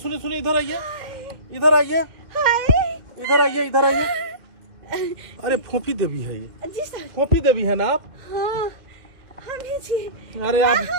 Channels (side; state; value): left; late; 1.8 ms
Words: सुनिए, इधर आइए, इधर आइए, हाय इधर आइए, इधर आइए। अरे फोफी देवी है ये, जी सर। फोफी देवी है ना आप? हाँ हम ही जी। अरे आप